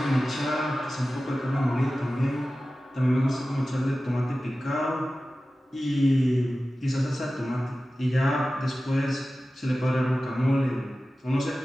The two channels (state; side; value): normal; both; correlation 0.95